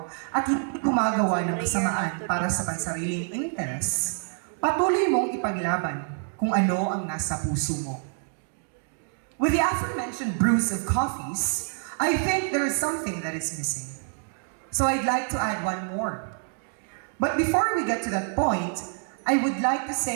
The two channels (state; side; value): silent; left; 55 dB below the other